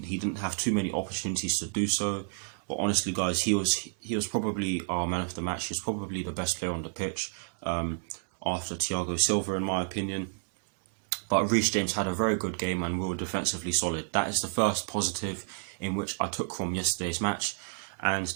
have too many opportunities to do so. But honestly, guys, he was probably our man of the match. He was probably the best player on the pitch after Thiago Silva, in my opinion. But Reece James had a very good game and we were defensively solid. That is the first positive in which I took from yesterday's match. And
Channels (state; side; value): silent; left; 56 dB below the other